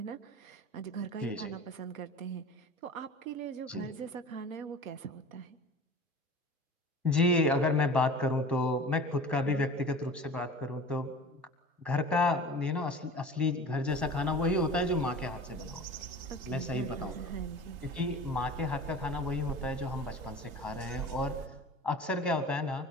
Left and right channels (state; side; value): normal; both; correlation 0.39